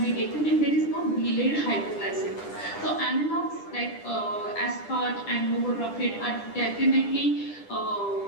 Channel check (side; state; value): right; late; 10 ms